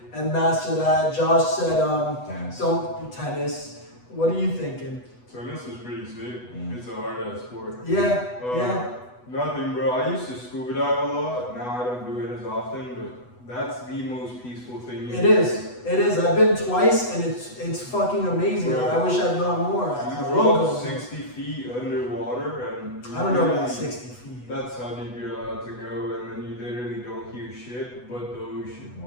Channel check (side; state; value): right; late; 8.1 ms